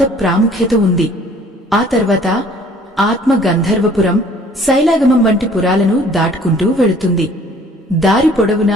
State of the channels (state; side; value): normal; both; correlation 0.55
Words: ప్రాముఖ్యత ఉంది. ఆ తర్వాత ఆత్మ గంధర్వపురం, శైలాగమం వంటి పురాలను దాటుకుంటూ వెళుతుంది. దారి